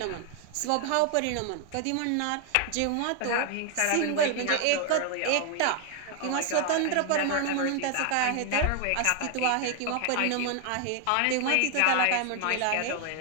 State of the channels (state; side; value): different; both; correlation 0.00